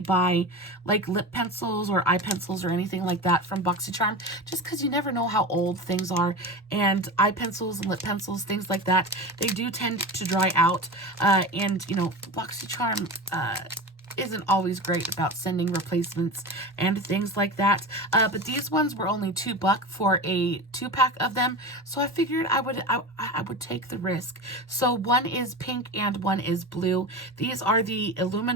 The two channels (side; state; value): both; normal; correlation 0.27